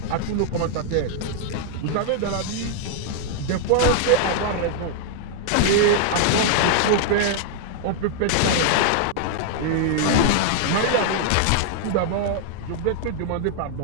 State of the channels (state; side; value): different; both; correlation -0.01